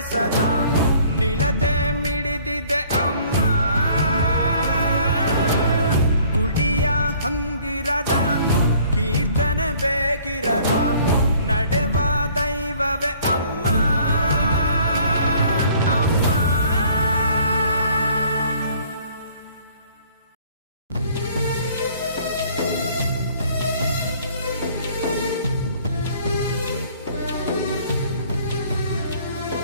ಸದಾ ನಿಲತೆ ಮಿಡಿದಿದೆ ಅಮ್ಮ. ಗುಡಿಯ ಹಂಗಿರದ ಕೀರ್ತನೆ ಬೇಕಿರದ ನಡೆವ ದೈವವೇ ಅಮ್ಮ. ಅಮ್ಮ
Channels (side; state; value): both; inverted; correlation -0.56